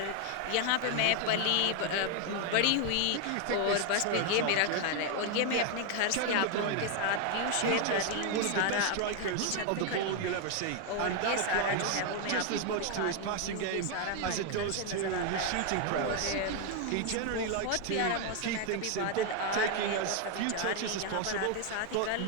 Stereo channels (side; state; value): both; different; correlation 0.01